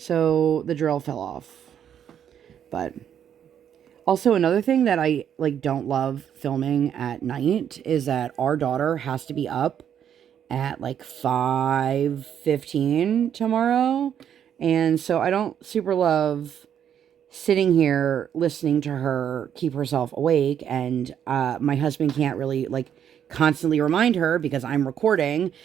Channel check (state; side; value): quieter; left; 9.1 dB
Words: the drill fell off. But also another thing that I like don't love filming at night is that our daughter has to be up at like 5:15 tomorrow. And so I don't super love sitting here listening to her keep herself awake. And my husband can't really like constantly remind her because I'm recording